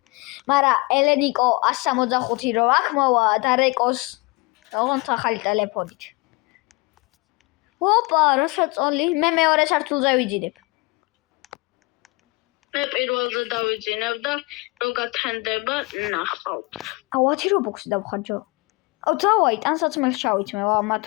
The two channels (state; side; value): quieter; right; 26.0 dB